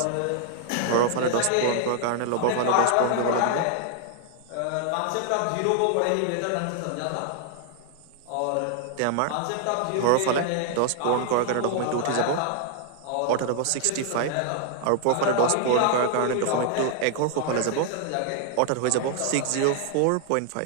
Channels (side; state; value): both; different; correlation 0.00